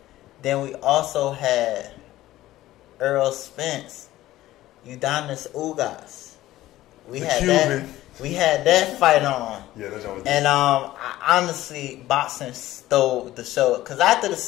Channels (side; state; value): right; quieter; 15.4 dB